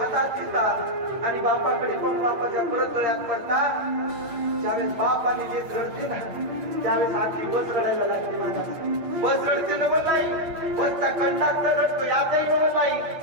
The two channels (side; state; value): left; late; 9.0 ms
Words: घेता आणि बापाकडे पण बापाच्या परत गळ्यात पडता. ज्यावेळेस बाप आणि जे रडते ना त्यावेळेस आखी बस रडायला लागते. माझा बस रडते नवं नाही, बसचा कंडक्टर रडतो यातही नवं नाही,